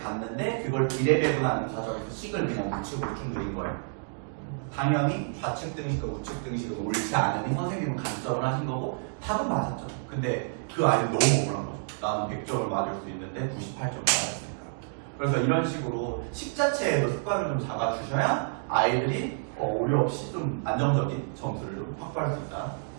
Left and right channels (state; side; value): silent; left; digital silence